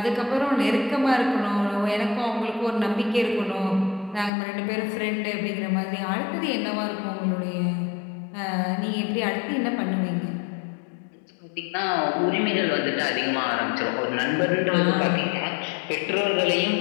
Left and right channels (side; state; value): right; drops out; at 4.3 s